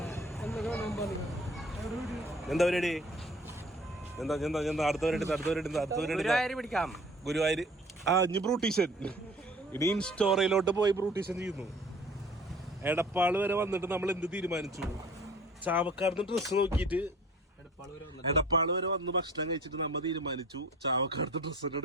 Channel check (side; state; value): both; normal; correlation 0.49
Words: എന്താ പരിപാടി? എന്താ അടുത്തവരുടെ പിടിക്കാം. ഗുരുവായൂർ. ഇനി ബ്രൂട്ടീഷൻ. ഇനി ഇൻസ്റ്റോറയിലോട്ട് പോയി ബ്രൂട്ടീഷൻ ചെയ്യുന്നു. എടപ്പാള് വരെ വന്നിട്ട് നമ്മൾ എന്ത് തീരുമാനിച്ചു? ചാവക്കാട് ഡ്രസ്സ് നോക്കിയിട്ട് എടപ്പാള് വരെ വന്ന് ഭക്ഷണം കഴിച്ചിട്ട് നമ്മൾ തീരുമാനിച്ചു ചാവക്കാടത്തെ ഡ്രസ്സ് തന്നെ